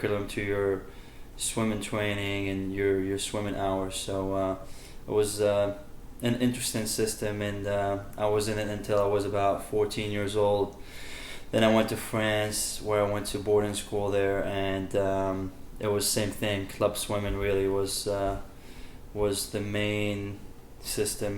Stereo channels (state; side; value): identical; both; correlation 1.00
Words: to your swimming training and your swimming hours. So it was an interesting system, and I was in it until I was about 14 years old. Then I went to France, where I went to boarding school there, and it was same thing. Club swimming really was the main